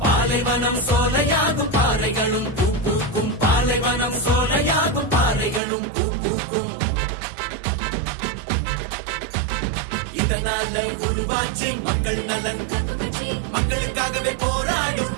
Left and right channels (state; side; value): drops out; left; at 5.6 s